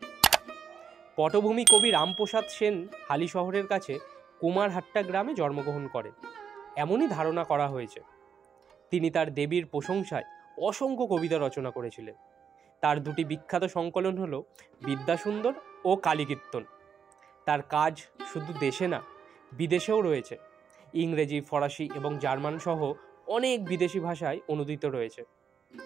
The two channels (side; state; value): left; quieter; 7.2 dB